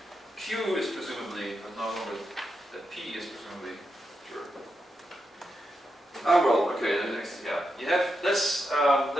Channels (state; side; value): normal; both; correlation 0.85